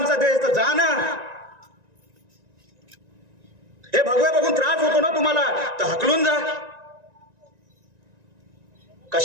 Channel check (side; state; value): left; late; 1.9 ms